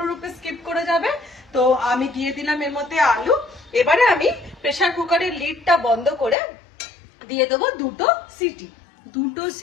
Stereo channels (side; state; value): right; drops out; at 6.4 s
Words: স্কিপ করে যাবে। তো আমি দিয়ে দিলাম এর মধ্যে আলু। এবারে আমি প্রেসার কুকারের লিডটা বন্ধ করে দিয়ে দেবো 2টো সিটি। 2টো